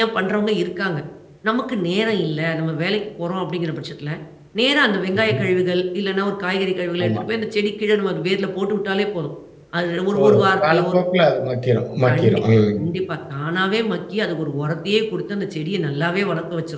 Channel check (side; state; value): both; identical; correlation 1.00